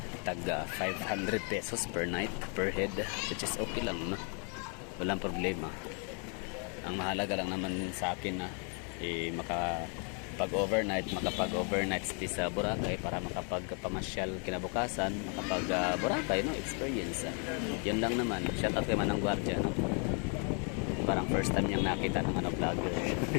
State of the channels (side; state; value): right; quieter; 38.4 dB